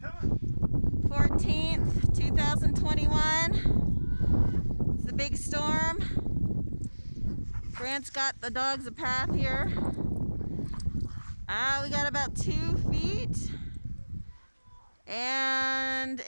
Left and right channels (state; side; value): inverted; both; correlation -1.00